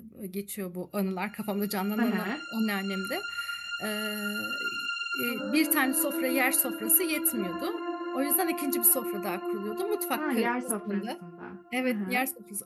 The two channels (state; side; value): identical; both; correlation 1.00